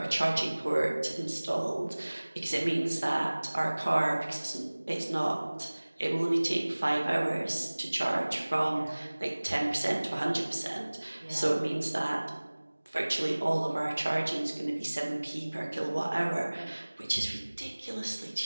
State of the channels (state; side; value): inverted; both; correlation -1.00